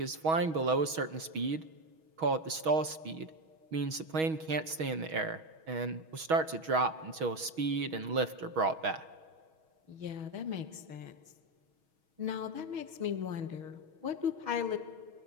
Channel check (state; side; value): late; left; 6.3 ms